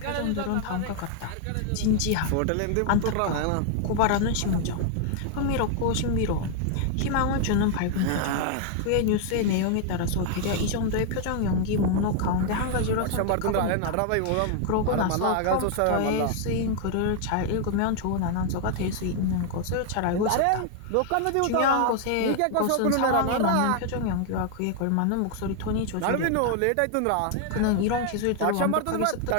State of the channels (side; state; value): both; different; correlation 0.00